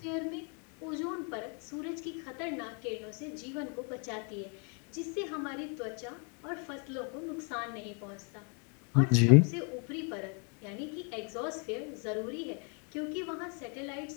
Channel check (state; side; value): quieter; right; 38.0 dB